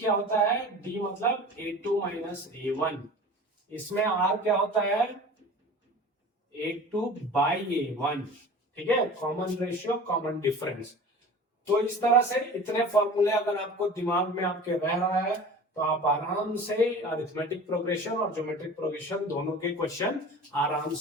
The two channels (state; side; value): normal; both; correlation 0.39